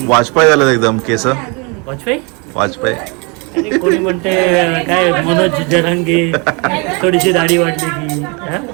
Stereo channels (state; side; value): quieter; left; 31.5 dB